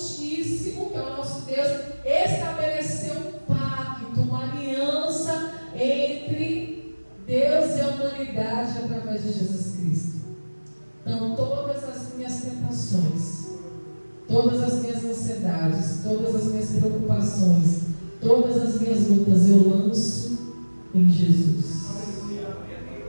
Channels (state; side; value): inverted; both; correlation -1.00